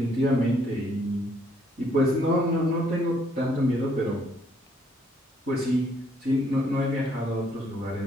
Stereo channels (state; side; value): normal; both; correlation 0.68